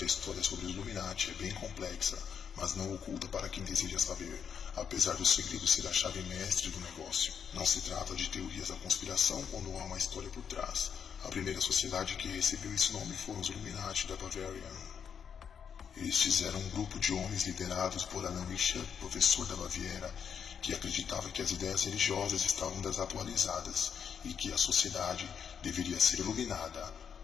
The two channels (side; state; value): right; quieter; 7.4 dB